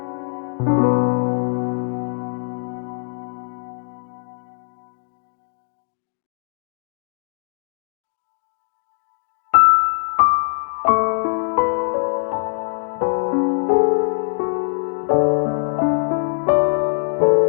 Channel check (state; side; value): silent; right; digital silence